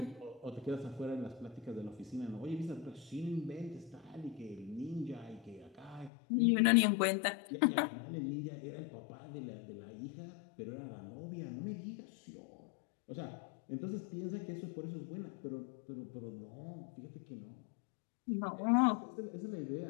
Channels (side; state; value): right; drops out; at 6.1 s